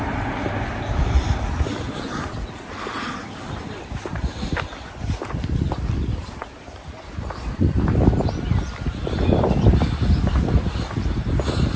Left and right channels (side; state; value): both; identical; correlation 1.00